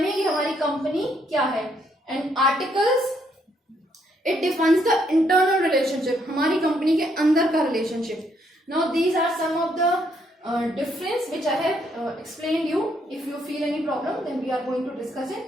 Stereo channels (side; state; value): both; normal; correlation 0.72